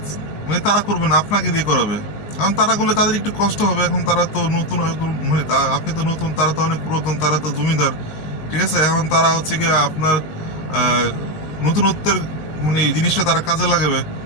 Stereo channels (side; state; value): right; late; 19 ms